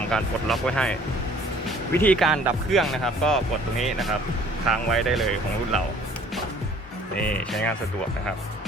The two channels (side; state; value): both; normal; correlation 0.55